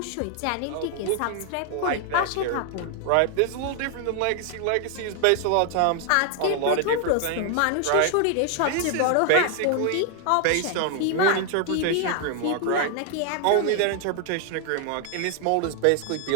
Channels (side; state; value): both; different; correlation 0.00